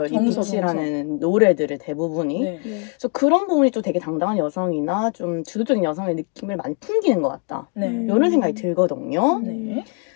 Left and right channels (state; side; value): quieter; right; 36.3 dB